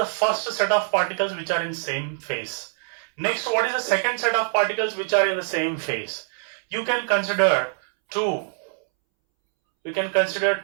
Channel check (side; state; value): left; silent; 63 dB below the other